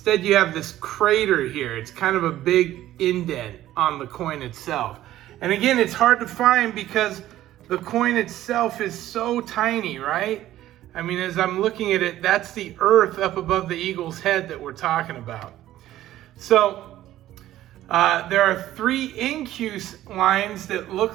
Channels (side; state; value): left; quieter; 13.8 dB